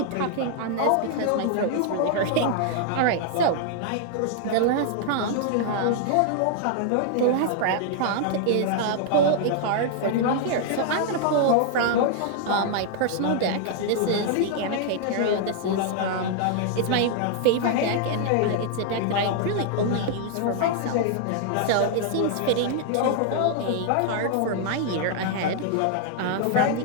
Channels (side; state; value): both; different; correlation -0.01